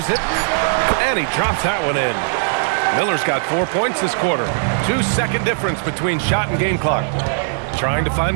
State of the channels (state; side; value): silent; left; 67 dB below the other